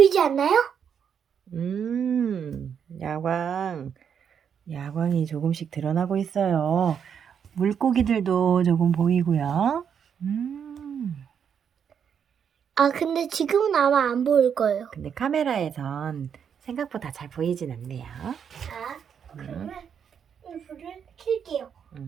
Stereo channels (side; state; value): left; quieter; 7.7 dB